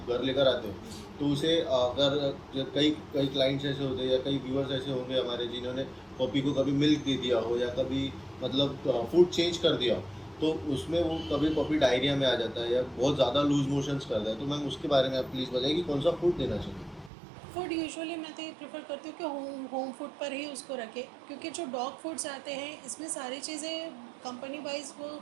घर लेकर आते हो तो उसे अगर कई कई क्लाइंट्स ऐसे होते हैं या कई व्यूअर्स ऐसे होंगे हमारे जिन्होंने पपी को कभी मिल्क दे दिया हो या कभी मतलब फूड चेंज कर दिया हो, तो उसमें वो कभी पपी डायरिया में आ जाता है या बहुत ज़्यादा लूज मोशंस करता है। तो मैम उसके बारे में आप प्लीज़ बताइए कि कौन सा फूड देना चाहिए? फूड यूजुअली मैं तो ये प्रेफर करती हूँ कि होम फूड पर ही उसको रखें, क्योंकि जो डॉग फूड्स आते हैं इसमें सारी चीज़ें कंपनी वाइज वो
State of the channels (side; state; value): left; drops out; at 17.1 s